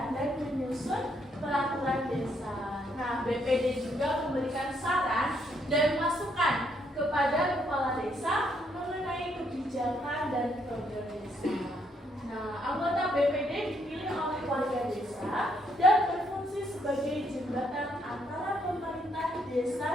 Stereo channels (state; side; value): normal; both; correlation 0.73